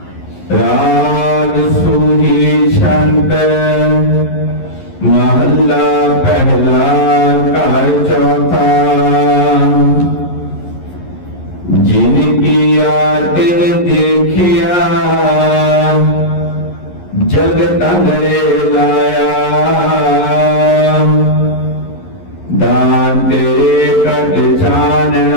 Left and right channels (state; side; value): late; right; 11 ms